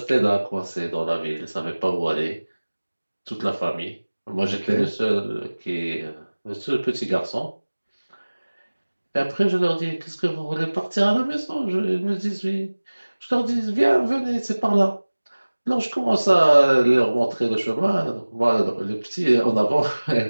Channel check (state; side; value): inverted; both; correlation -1.00